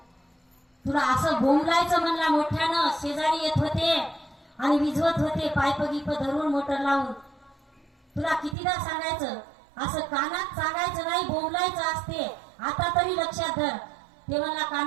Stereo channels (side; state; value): left; drops out; at 8.6 s